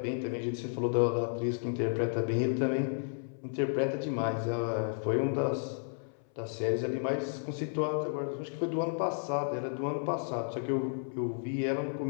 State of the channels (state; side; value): silent; right; 56 dB below the other